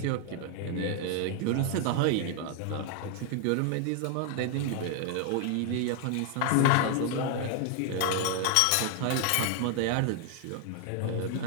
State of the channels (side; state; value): both; different; correlation 0.00